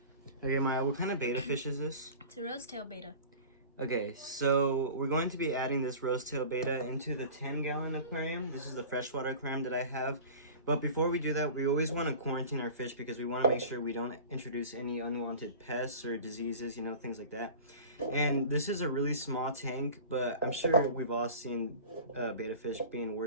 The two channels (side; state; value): both; inverted; correlation -0.38